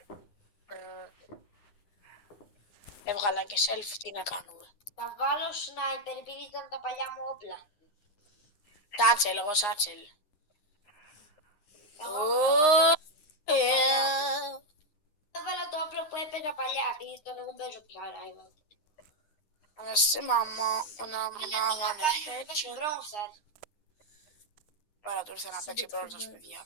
Έβγαλα και selfie, τι να κάνουμε. Θα βάλω σνάιπερ επειδή ήταν τα παλιά μου όπλα. Σάτσελ, εγώ σάτσελ. Έβαλα το όπλο που έπαιζα παλιά, επειδή τώρα δεν παίζω πια rival. Αναστή μαμά, να παίξει Bronze. Πάρα του ήρθε να παίξει πρώτος, παιδιά.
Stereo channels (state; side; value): late; right; 9.7 ms